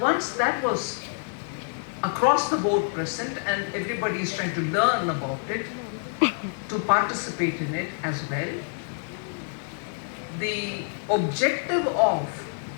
that was across the board present and everybody is trying to learn about it, to participate in it as well, the objective of,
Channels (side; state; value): right; silent; 60 dB below the other